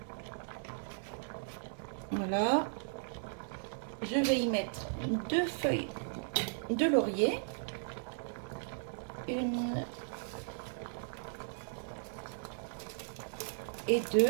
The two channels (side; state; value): left; silent; digital silence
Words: Voilà. Je vais y mettre 2 feuilles de laurier. Une et